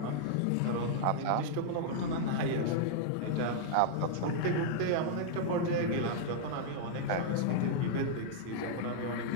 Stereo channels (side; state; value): both; different; correlation -0.01